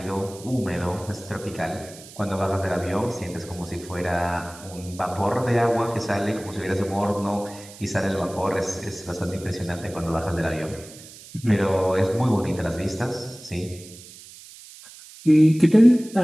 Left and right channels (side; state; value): right; noise; hiss, 18 dB below the sound